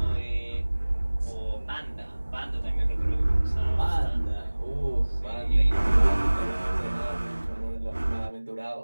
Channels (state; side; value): inverted; both; correlation -1.00